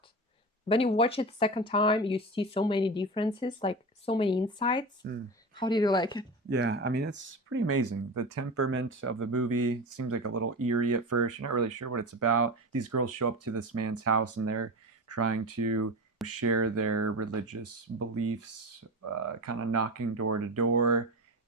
When you watch it second time, you see so many differences, like so many insights. Mm. How did you like it? Yeah, I mean, it's pretty amazing. The temperament of the movie seems like a little eerie at first. You're not really sure what it's about. These girls show up to this man's house and they're trying to share their religious beliefs, kind of knocking door to door.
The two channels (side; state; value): both; normal; correlation 0.25